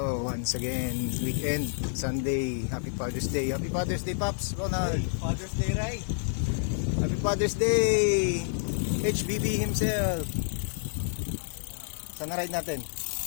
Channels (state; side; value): silent; right; digital silence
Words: Once again, weekend, Sunday. Happy Father's Day. Happy Father's Day, Pops. Ronald. Father's Day, right? Happy Father's Day. HBB himself. Saan na ride natin?